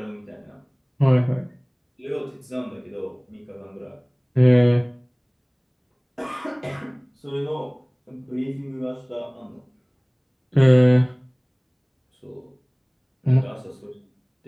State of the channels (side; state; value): both; identical; correlation 1.00